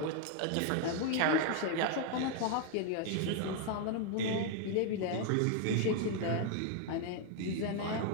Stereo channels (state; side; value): different; both; correlation 0.00